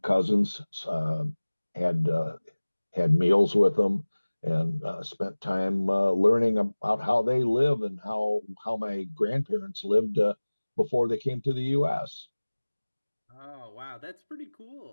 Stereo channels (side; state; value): both; inverted; correlation -1.00